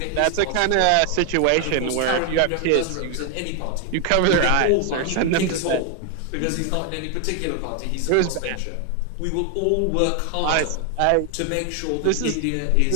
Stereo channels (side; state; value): both; different; correlation 0.00